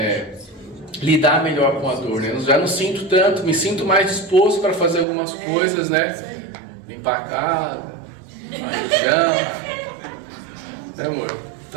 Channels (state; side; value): drops out; left; at 5.1 s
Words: lidar melhor com a dor, né? Eu já não sinto tanto, me sinto mais disposto para fazer algumas coisas, né? Limpar a casa, limpar o chão, né, amor?